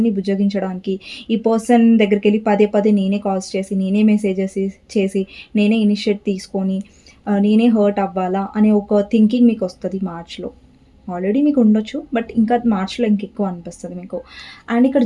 బుజ్జగించడానికి ఈ పర్సన్ దగ్గరికెళ్ళి పదే పదే నేనే కాల్స్ చేసి, నేనే మెసేజెస్ చేసి, నేనే ఇనిషియేట్ తీసుకొని, నేనే హర్ట్ అవ్వాలా అనే ఒక థింకింగ్ మీకొస్తది మార్చ్‌లో. ఆల్రెడీ మీకుండొచ్చు. బట్ ఇంకా మార్చ్‌లో ఇంకెక్కువ అనిపిస్తది మీకు. అండ్ ఇక్కడ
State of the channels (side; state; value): both; identical; correlation 1.00